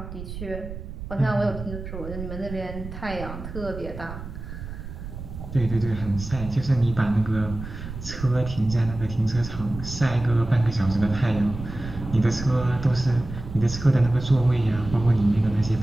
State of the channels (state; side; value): noise; right; rumble, 10 dB below the sound